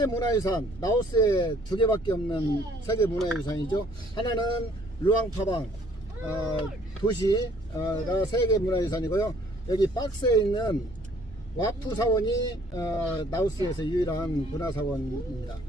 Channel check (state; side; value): normal; both; correlation 0.60